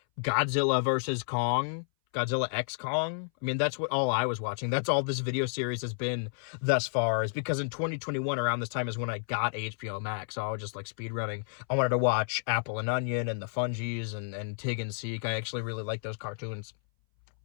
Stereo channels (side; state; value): right; silent; 57 dB below the other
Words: Godzilla vs. Kong, Godzilla X Kong. I mean, that's what all I was watching. That's all this video series has been thus far, is because in 2021, around this time, is when I got HBO Max. So I was just, like, speedrunning. I wanted to watch Apple and Onion and the Fungies and Tig and Seek. I actually really like those cartoons.